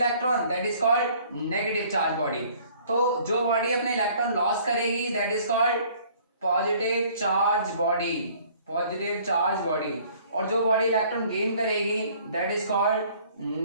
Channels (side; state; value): both; inverted; correlation -0.56